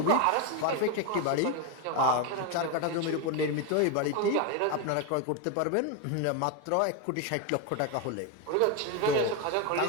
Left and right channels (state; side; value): different; both; correlation 0.02